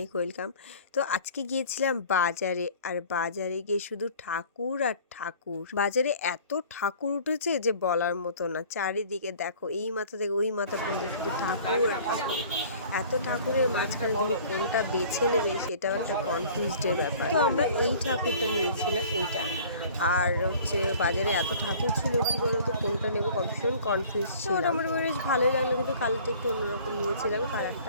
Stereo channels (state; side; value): inverted; both; correlation -0.48